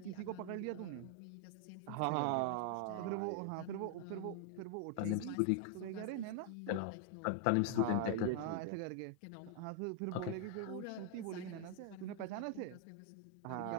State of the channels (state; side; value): different; both; correlation 0.00